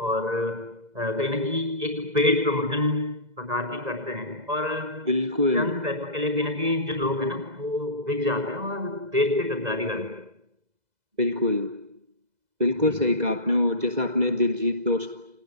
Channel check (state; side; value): late; left; 2.0 ms